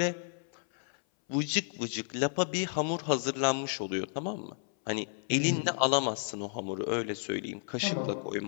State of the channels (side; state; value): right; silent; 56 dB below the other